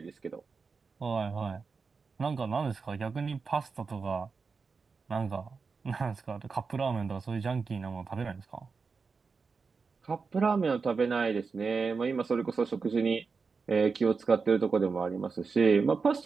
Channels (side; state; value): left; quieter; 4.9 dB